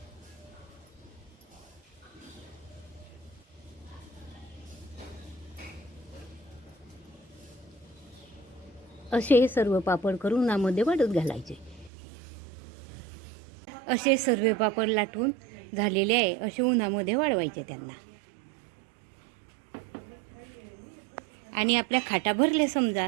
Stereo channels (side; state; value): left; drops out; at 11.9 s